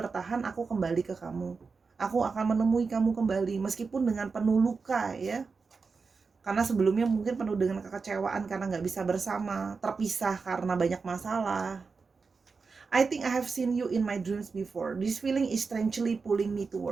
aku kembali ke kamu. Aku akan menemui kamu kembali meskipun dengan penuh luka ya. Karena sebelumnya mungkin penuh dengan kekecewaan karena nggak bisa bersama, terpisah karena banyak masalah. I think I have seen you in my dreams before. This feeling is strangely pulling me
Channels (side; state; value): left; quieter; 4.8 dB